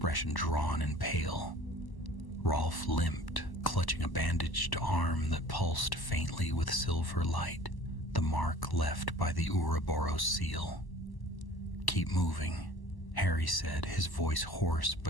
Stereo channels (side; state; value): right; late; 1.0 ms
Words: drawn and pale. Rolf limped, clutching a bandaged arm that pulsed faintly with silver light, the mark left by the Ouroboros seal. "Keep moving," Harry said, his voice hoarse